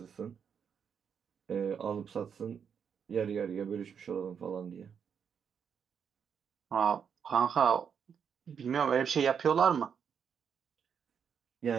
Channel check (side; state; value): left; quieter; 7.2 dB